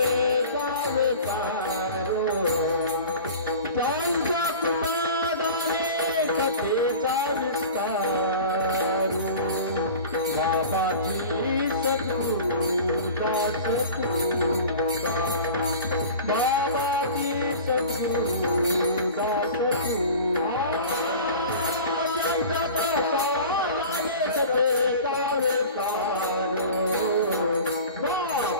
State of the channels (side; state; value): both; inverted; correlation -0.38